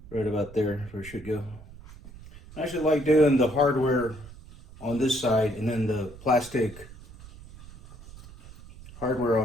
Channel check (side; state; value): right; noise; rumble, 18 dB below the sound